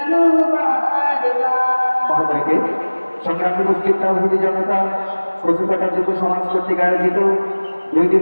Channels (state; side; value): inverted; both; correlation -1.00